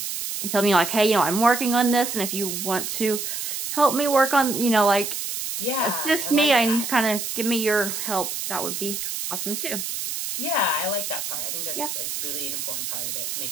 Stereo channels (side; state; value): right; noise; hiss, 4 dB below the sound